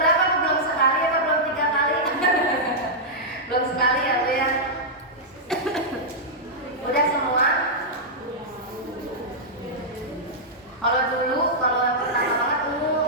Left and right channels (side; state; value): both; normal; correlation -0.09